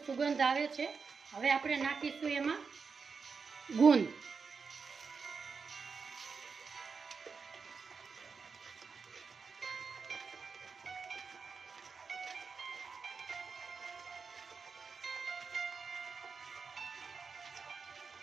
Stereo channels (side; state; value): left; quieter; 5.2 dB